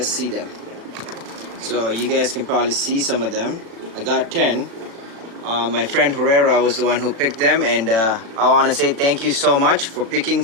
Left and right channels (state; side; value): late; left; 36 ms